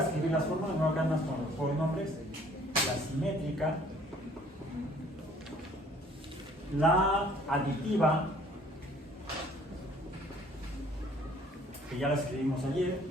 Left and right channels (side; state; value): both; normal; correlation 0.57